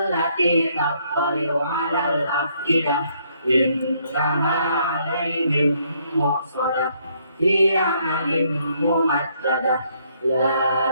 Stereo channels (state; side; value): inverted; both; correlation -0.69